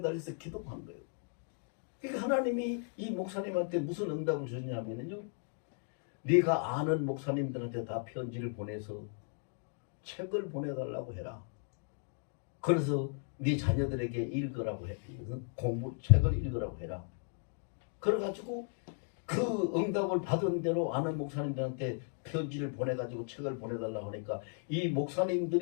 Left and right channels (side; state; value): right; silent; 54 dB below the other